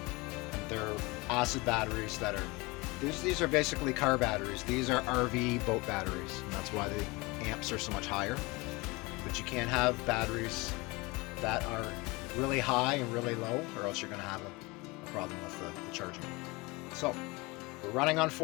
And they're acid batteries that are, these are basically car batteries. These are RV boat batteries, and that's why the amps are so much higher. But you can't have batteries that are really high and really low, or else you're going to have a problem with the charging. So we're running on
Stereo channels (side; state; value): right; quieter; 24.7 dB